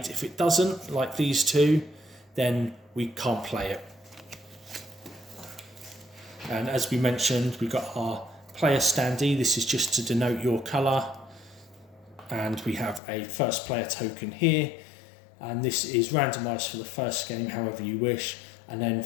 If it doesn't, like these 2, then we can't play it. And as we mentioned, we've got our player standee. This is just to denote your colour. And we have a first player token here. And this is randomised for the first game, however you wish. And then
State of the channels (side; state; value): right; drops out; at 13.0 s